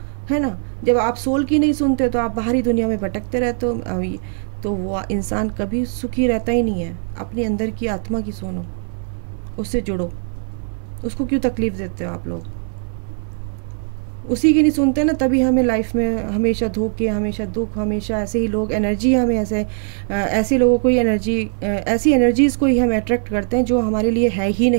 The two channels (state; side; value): silent; left; digital silence